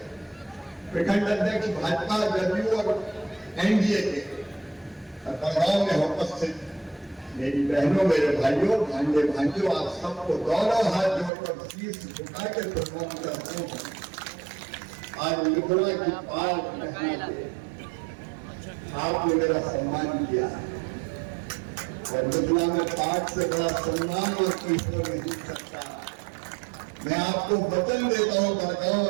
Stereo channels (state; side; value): drops out; left; at 11.3 s